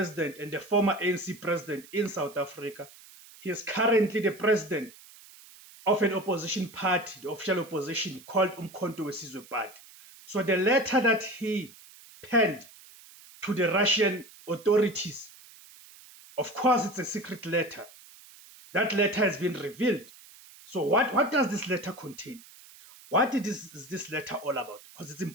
and the former ANC president in South Africa. He is currently the president of an opposition party, the official opposition called Umkhonto weSizwe Party. So the letter that he penned to the Russian authorities, of course, it's a secret letter. That letter has been revealed. So what does this letter contain? What is this letter all about? Because it's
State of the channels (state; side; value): noise; right; hiss, 21 dB below the sound